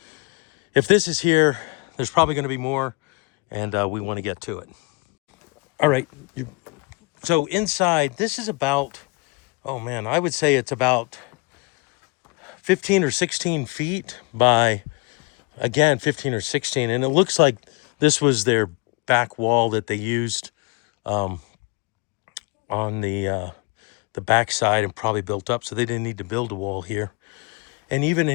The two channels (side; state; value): right; quieter; 28.8 dB